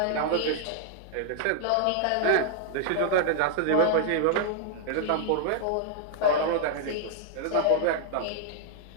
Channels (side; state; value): both; different; correlation -0.01